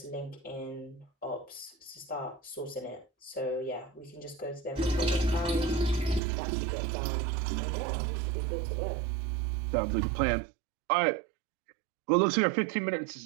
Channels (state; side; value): drops out; left; at 6.2 s